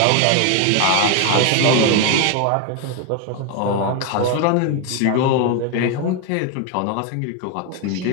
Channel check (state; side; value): different; both; correlation 0.01